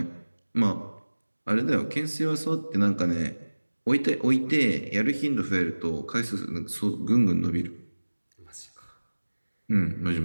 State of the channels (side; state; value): both; inverted; correlation -1.00